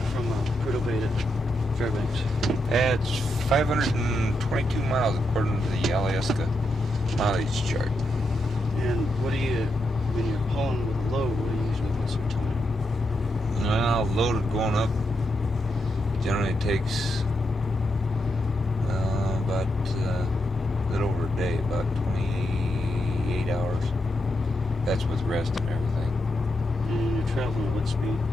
from Prudhoe Bay to Fairbanks? It's 522 miles according to the Alyeska mileage chart. And what do you, when you're pulling with a load, what do you usually put some time? Well, loaded going up generally takes about a little over a day, about 28 hours. That's with rest and everything. And you're traveling at what speed?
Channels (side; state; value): both; normal; correlation 0.83